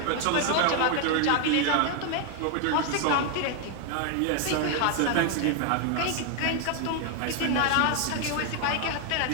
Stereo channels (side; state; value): both; different; correlation 0.00